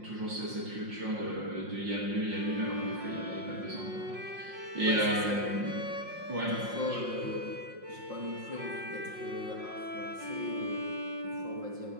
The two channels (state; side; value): late; left; 5.6 ms